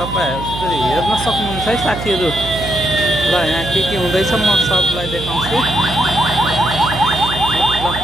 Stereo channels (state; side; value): noise; right; hum, 8 dB below the sound